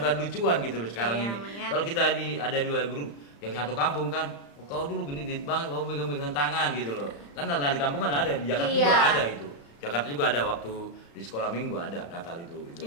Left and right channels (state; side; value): late; right; 35 ms